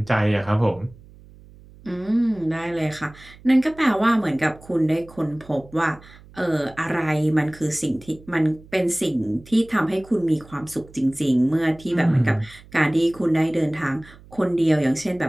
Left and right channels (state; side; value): noise; right; hum, 23 dB below the sound